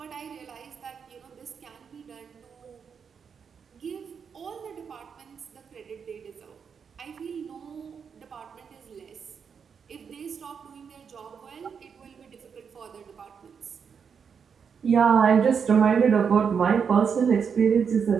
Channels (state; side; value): quieter; left; 6.6 dB